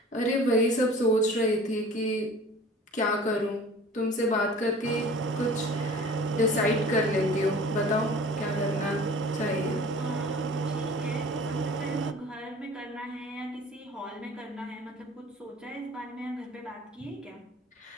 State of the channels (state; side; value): normal; both; correlation 0.44